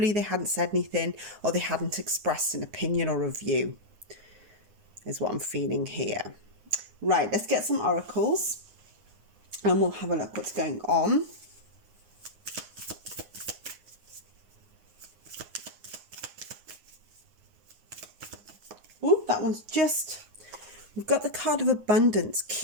they hadn't said anything or they hadn't expressed an opinion or a view, is what I'm feeling here. Right, let's get some oracles and we'll have a look what's going on. Ooh, that one's just... We've got the card of abundance.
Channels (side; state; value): left; late; 9.6 ms